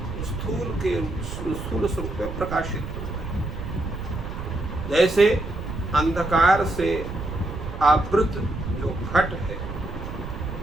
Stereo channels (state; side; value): noise; right; rumble, 7 dB below the sound